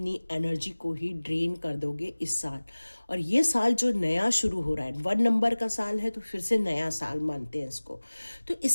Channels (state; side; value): inverted; both; correlation -1.00